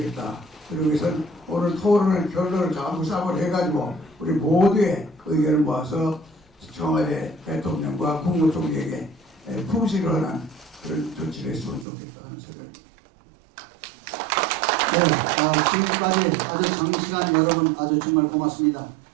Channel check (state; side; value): drops out; left; at 11.9 s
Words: 그러기 위해서는 오늘 토론을 결론을 전부 싹을 해가지고 우리 모두의 의견을 모아서 청와대 대통령과 국무총리에게 풍시를 하는 그런 조치를 했으면 좋겠다 하는 생각입니다. 네, 지금까지 아주 장시간 여러분 아주 정말 고맙습니다.